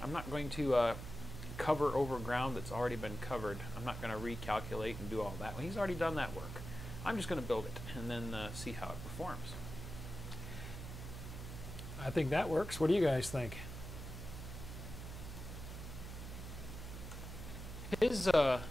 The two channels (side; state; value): right; noise; hum, 8 dB below the sound